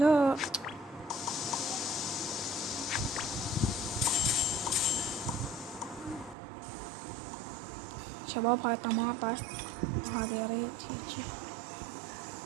شباب هاي طماطة. هذا يريد هيجي.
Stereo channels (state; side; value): drops out; left; at 6.4 s